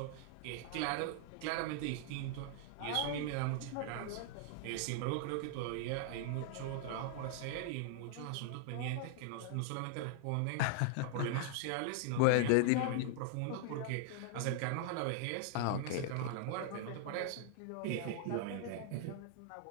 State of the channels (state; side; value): different; both; correlation -0.01